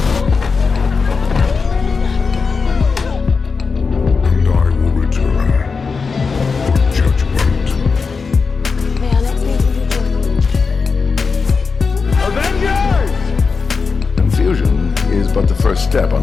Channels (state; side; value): quieter; right; 4.9 dB